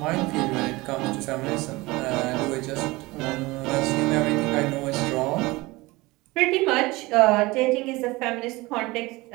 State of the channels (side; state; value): left; quieter; 21.7 dB